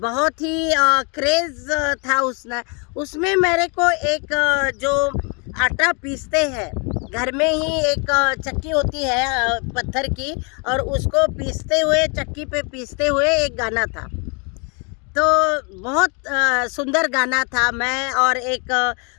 ही क्रेज़ था उसमें मेरे को एक जो आटा पीसते हैं घर में ही, एक चक्की होती है पत्थर की, और उसको पीसते हुए चक्की पे पीसते हुए एक गाना था। तो बहुत सुंदर गाना था। मैं और एक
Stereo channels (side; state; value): right; quieter; 34.6 dB